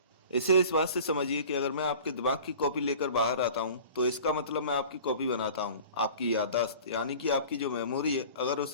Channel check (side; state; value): both; inverted; correlation -0.43